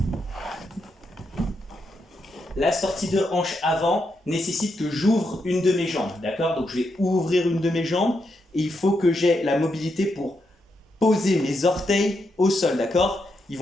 La sortie de hanche avant nécessite que j'ouvre une de mes jambes, d'accord? Donc je vais ouvrir une de mes jambes et il faut que j'ai la mobilité pour poser mes orteils au sol, d'accord? Ils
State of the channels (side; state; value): both; normal; correlation 0.82